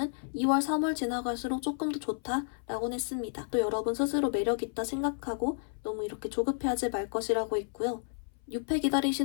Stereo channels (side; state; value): right; silent; 57 dB below the other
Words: 2월, 3월 지나갈수록 조금 더 좋다라고 했습니다. 또 여러분 스스로 매력 있다 생각하고 너무 이렇게 조급해하지 말 것이라고 했고요. 6회